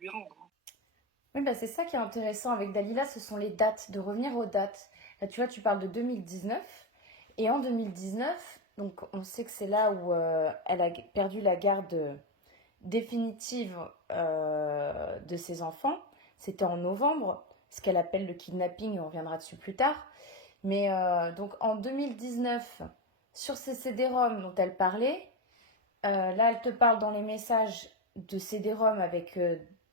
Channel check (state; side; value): normal; both; correlation 0.12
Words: rendre. Oui, bah c'est ça qui est intéressant avec Dalila, ce sont les dates, de revenir aux dates. Là, tu vois, tu parles de 2019, et en 2019, donc on sait que c'est là où elle a perdu la garde définitive de ses enfants. C'était en novembre, ce qu'elle appelle le kidnapping, on reviendra dessus plus tard. Mais donc en 2019, sur ces CD-ROM dont elle parlait, là elle te parle dans les messages de CD-ROM avec